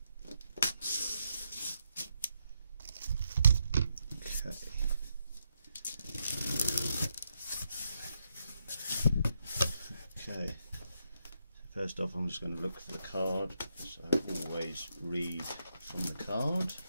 Okay, first off I'm just going to look for the card, so always read from the card.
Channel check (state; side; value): inverted; both; correlation -0.80